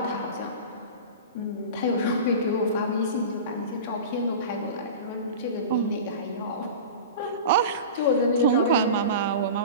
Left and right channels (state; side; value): inverted; both; correlation -0.32